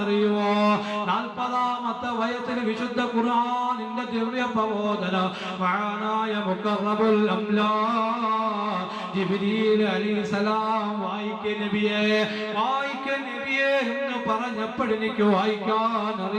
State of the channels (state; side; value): identical; both; correlation 1.00